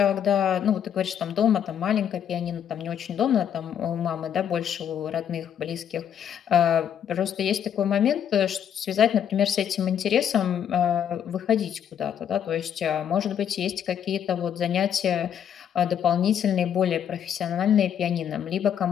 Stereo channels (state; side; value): quieter; right; 9.0 dB